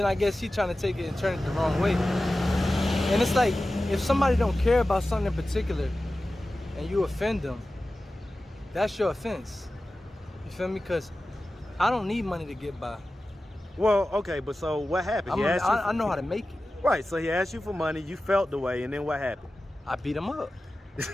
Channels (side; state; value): both; normal; correlation 0.95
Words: I guess he trying to take it and turn it the wrong way. And it's like, if somebody don't care about something in particular and you offend them, that's your offense. You feel me? Because I don't need money to get by. Well, okay, but so what happened? I know how to make it. Right, so he asked you for money, you felt the way, and then what happened? I beat him up.